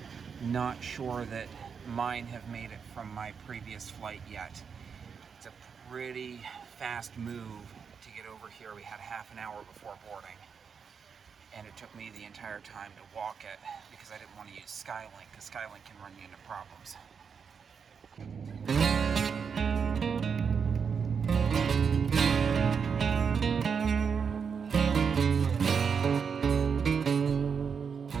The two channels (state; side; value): quieter; left; 6.3 dB